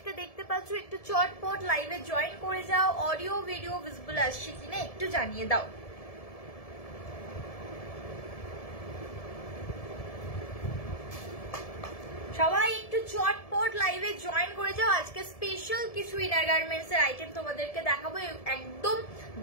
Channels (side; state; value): right; late; 1.7 ms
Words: দেখতে পাচ্ছ একটু চটপট লাইভে জয়েন করে যাও। অডিও ভিডিও ভিজিবল আসছে কিনা একটু জানিয়ে দাও। সবাই একটু চটপট লাইভে জয়েন করে যাও। আজকে স্পেশাল কিছু ইনার গার্মেন্টস এর আইটেম তোমাদেরকে দেখাবো। একদম